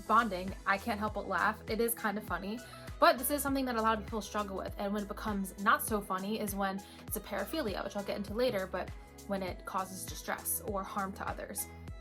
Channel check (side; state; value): both; identical; correlation 1.00